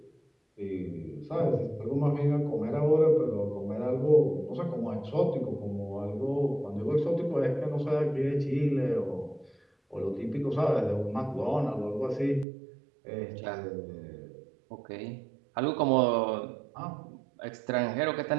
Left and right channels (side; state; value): left; drops out; at 12.5 s